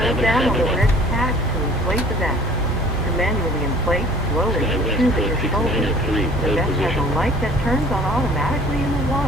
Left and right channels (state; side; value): normal; both; correlation 0.50